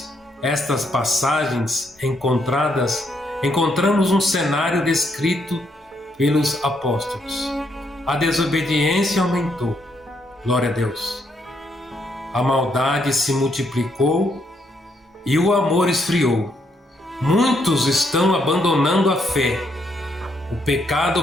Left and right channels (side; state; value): both; normal; correlation 0.75